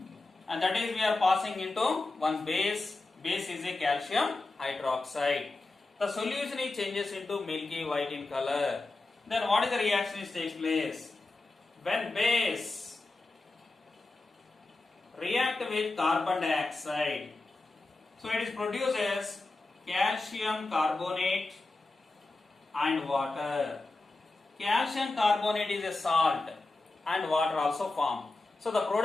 and that is we are passing into one base. Base is a calcium hydroxide. The solution changes into milky white in color. Then what is the reaction that takes place? When base react with carbon dioxide, so it is produces calcium carbonate and water. Calcium carbonate is a salt and water also form. So the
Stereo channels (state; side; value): quieter; right; 3.2 dB